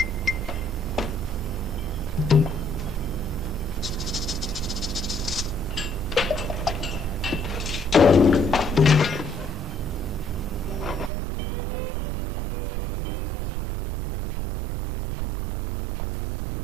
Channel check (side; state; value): left; drops out; at 11.1 s